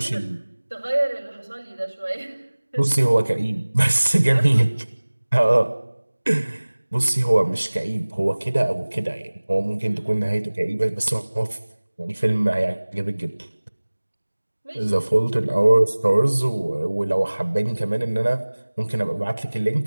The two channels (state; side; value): inverted; both; correlation -1.00